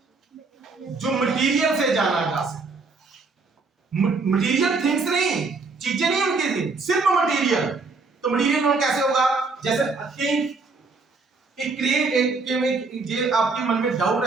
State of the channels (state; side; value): quieter; left; 4.1 dB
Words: जो मटीरियल से जाना जा सके। मटीरियल थिंग्स नहीं, चीजें नहीं उनकी थी, सिर्फ मटीरियल। तो मटीरियल नाउन कैसे होगा? जैसे थिंक, एक क्रिएट, एक जे आपके मन में डाउट